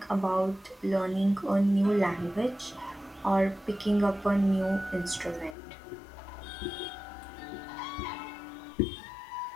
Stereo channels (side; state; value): right; drops out; at 5.6 s